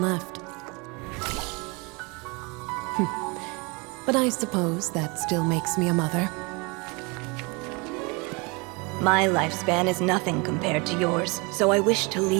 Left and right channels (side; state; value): left; quieter; 28.9 dB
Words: left. But I suppose that still makes me a mother. My lifespan is nothing compared to yours, so I wish to